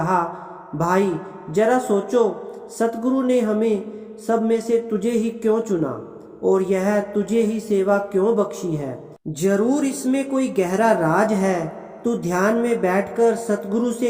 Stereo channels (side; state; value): both; identical; correlation 1.00